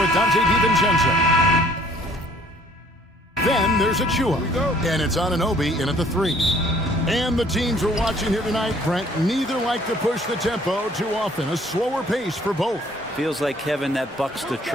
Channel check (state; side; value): normal; both; correlation 0.58